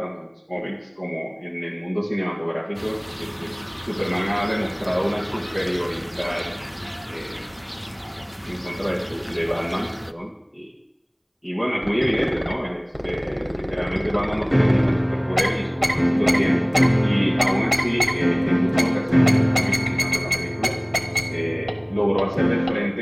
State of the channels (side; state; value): both; identical; correlation 1.00